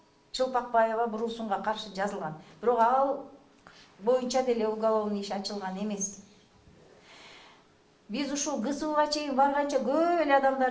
Чылпакбаева Бурусунга каршы жазылган. Бирок ал боюнча деле уголовный иш ачылган эмес. Биз ушул ГСУга чейин барганча көп эле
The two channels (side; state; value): both; identical; correlation 1.00